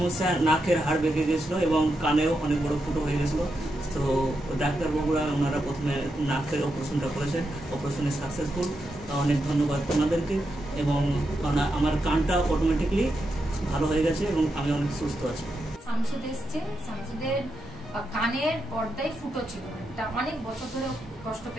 নাকের হাড় বেঁকে গেছিলো এবং কানেও অনেক বড় ফুটো হয়ে গেছিলো। তো ডাক্তারবাবুরা ওনারা প্রথমে নাকের অপারেশনটা করেছেন, অপারেশনে সাকসেসফুল। অনেক ধন্যবাদ ওনাদেরকে। এবং আমার কানটা অটোমেটিকলি ভালো হয়ে গেছে এবং আমি অনেক সুস্থ আছি। শামসুদ এসছে, শামসুদের কানের পর্দায় ফুটো ছিল, এটা অনেক বছর ধরে কষ্ট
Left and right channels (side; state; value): both; normal; correlation 0.85